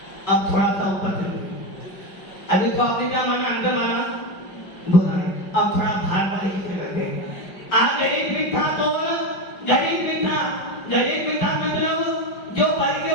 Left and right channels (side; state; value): right; late; 5.3 ms